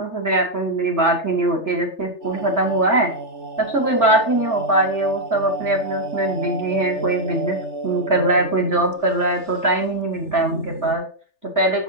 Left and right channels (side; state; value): right; late; 3.4 ms